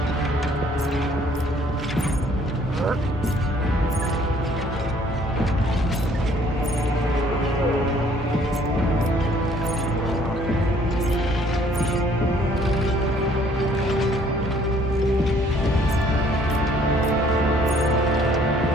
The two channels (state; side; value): normal; both; correlation 0.60